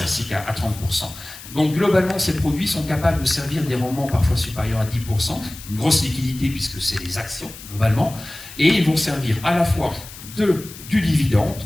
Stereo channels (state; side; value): noise; left; hiss, 15 dB below the sound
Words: à 30%. Donc globalement, ces produits sont capables de servir des rendements parfois supérieurs à 10%, une grosse liquidité puisque c'est des actions globalement, et ils vont servir à la fois du dividende,